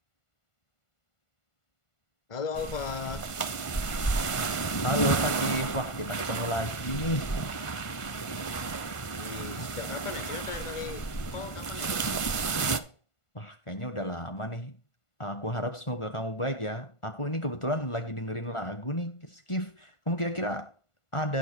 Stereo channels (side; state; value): right; late; 1.5 ms